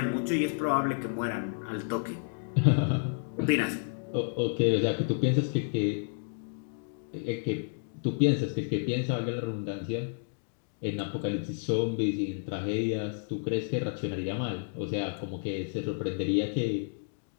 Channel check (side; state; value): right; silent; digital silence